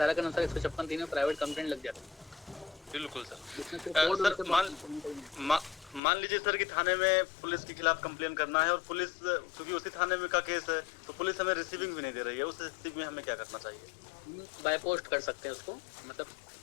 के अनुसार 156(3) में प्राइवेट कंप्लेंट लग जाती है। बिल्कुल सर। मान लीजिए सर कि थाने में पुलिस के खिलाफ कंप्लेन करना है और पुलिस क्योंकि उसी थाने में का केस है, तो पुलिस हमें रिसीविंग भी नहीं दे रही है, उस स्थिति में हमें क्या करना चाहिए? बाय पोस्ट कर सकते हैं उसको, मतलब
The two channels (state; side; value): drops out; right; at 6.0 s